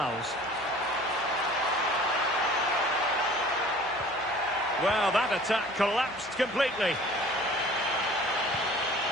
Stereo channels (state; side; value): noise; right; hum, 23 dB below the sound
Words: Well, that attack collapsed completely.